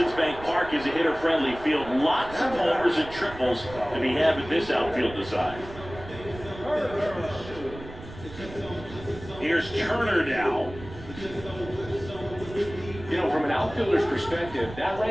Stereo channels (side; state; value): right; noise; rumble, 15 dB below the sound